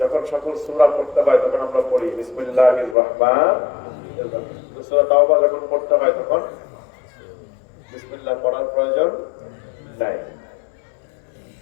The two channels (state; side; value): drops out; right; at 3.0 s